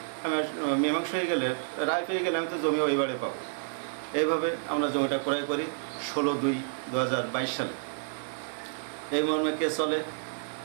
আমি মীমাংসা হয়ে গেলে, রায় পেয়ে গেলে আমি তো জমি ওইবারে পাবো। এইভাবে আমরা জমিটা ক্রয় করি ১৬/২/২০২২ সালে। এই মর্মে কেস চলে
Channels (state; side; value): silent; left; digital silence